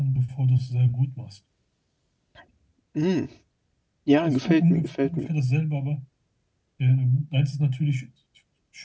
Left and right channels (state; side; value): identical; both; correlation 1.00